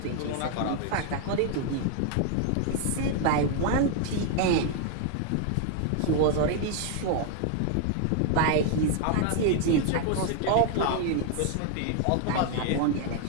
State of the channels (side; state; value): both; different; correlation 0.00